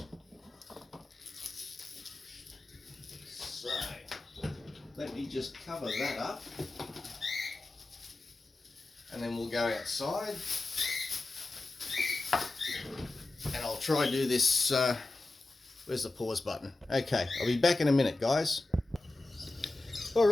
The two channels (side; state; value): right; quieter; 3.0 dB